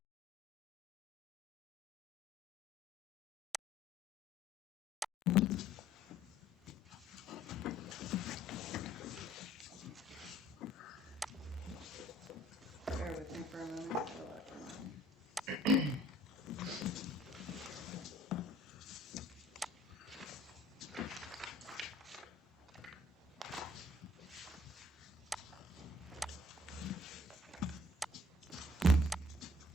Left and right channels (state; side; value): normal; both; correlation 0.57